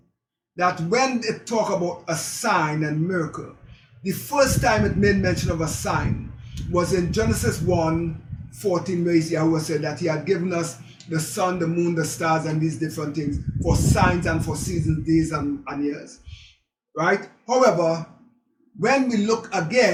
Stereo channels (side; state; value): both; identical; correlation 1.00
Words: that when it talk about a sign and miracle, the first time it made mention of a sign was in Genesis 1:14, where Yahweh said that he had given us the sun, the moon, the stars, and these different things for signs and for seasons, days, and years. Right? However, when we look